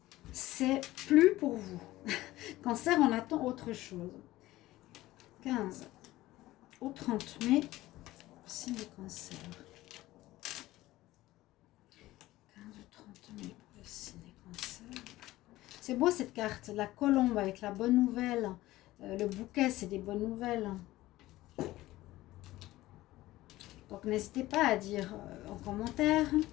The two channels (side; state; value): right; quieter; 16.9 dB